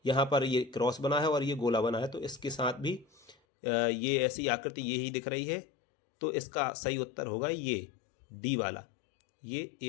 यहाँ पर ये क्रॉस बना है और ये गोला बना है, तो इसके साथ भी ये ऐसी आकृति ये ही दिख रही है। तो इसका सही उत्तर होगा ये डी वाला। ये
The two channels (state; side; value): drops out; right; at 3.4 s